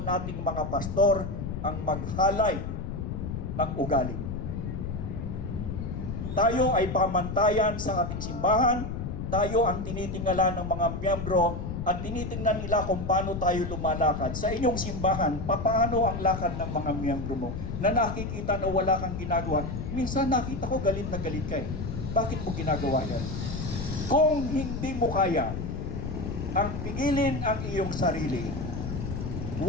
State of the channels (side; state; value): left; noise; rumble, 5 dB below the sound